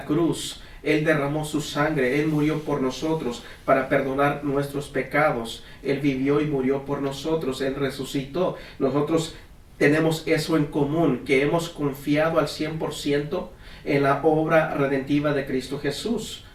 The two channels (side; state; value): both; identical; correlation 1.00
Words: cruz, Él derramó su sangre, Él murió por nosotros para perdonar nuestros pecados. Él vivió y murió por nosotros, Él resucitó. Nosotros tenemos eso en común, que hemos confiado al 100% en la obra redentiva de Cristo Jesús